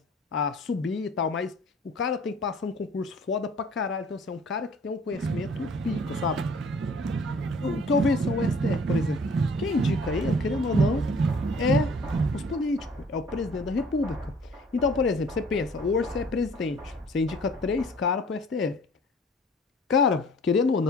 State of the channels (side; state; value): both; normal; correlation 0.52